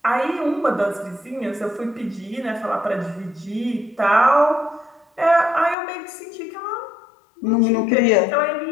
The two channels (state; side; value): drops out; right; at 5.8 s